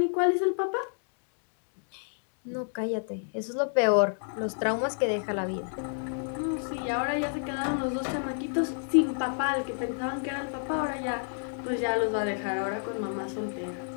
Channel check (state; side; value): silent; right; digital silence